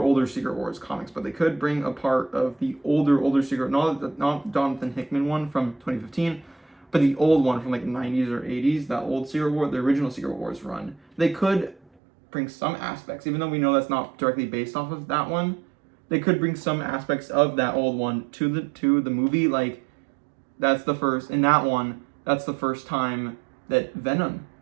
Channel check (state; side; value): drops out; left; at 11.8 s